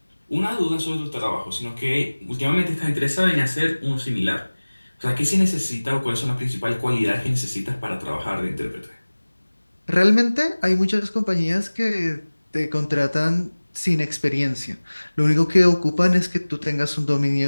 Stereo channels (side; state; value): both; inverted; correlation -1.00